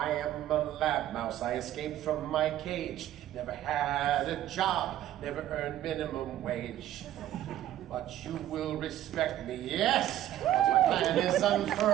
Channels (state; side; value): quieter; left; 12.7 dB